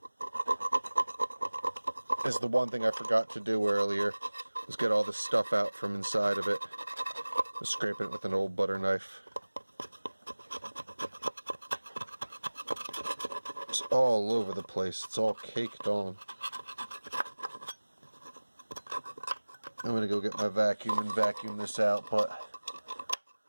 This is the one thing I forgot to do earlier. Let's get all the stuff out from inside of it. Just scraping it with an old butter knife. It's all over the place. It's all caked on. I'm gonna go get my vacuum and vacuum this out, but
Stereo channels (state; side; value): inverted; both; correlation -1.00